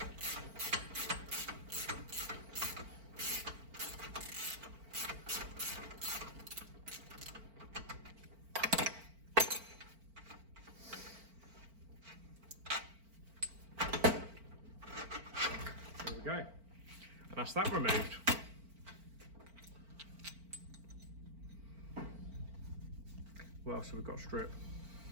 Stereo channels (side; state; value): left; late; 4.4 ms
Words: Go. And that's that removed. What else have we got? Strip.